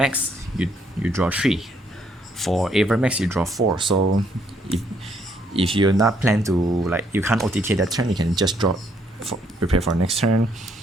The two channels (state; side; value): normal; both; correlation 0.70